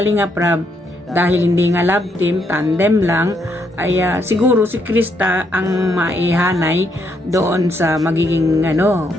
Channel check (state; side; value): normal; both; correlation 0.75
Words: Prab, dahil hindi nga love team, tandem lang, ay siguro si Krista ang maihanay doon sa magiging